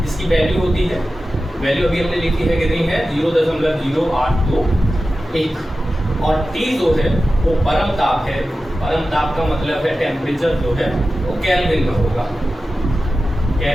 जिसकी वैल्यू होती है, वैल्यू अभी हमने लिखी है कितनी है? 0.0821। और T जो है वो परम ताप है। परम ताप का मतलब है टेम्परेचर जो है वो केल्विन में होगा,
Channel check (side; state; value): both; normal; correlation 0.94